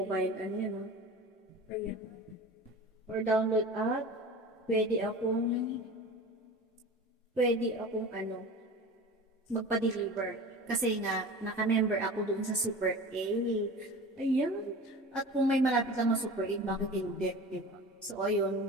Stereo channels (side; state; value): both; normal; correlation 0.35